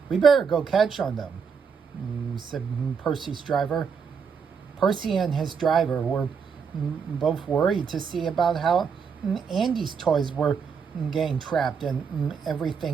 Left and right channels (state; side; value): quieter; left; 6.2 dB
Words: We better go catch on them, said Percy's driver. Percy and his driver were both worried to see about how Andy's toys were getting trapped and